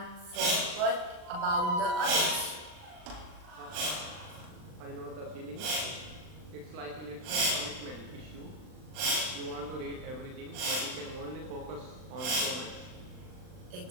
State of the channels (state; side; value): late; left; 39 ms